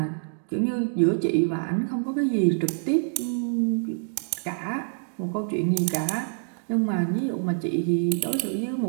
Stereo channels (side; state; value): left; silent; digital silence